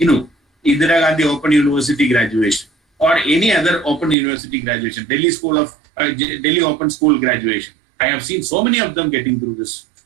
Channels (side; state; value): left; drops out; at 4.2 s